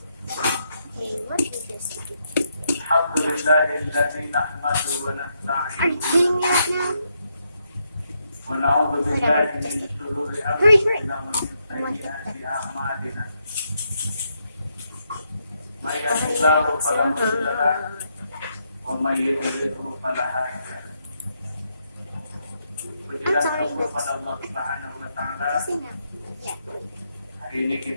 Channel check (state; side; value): inverted; both; correlation -0.79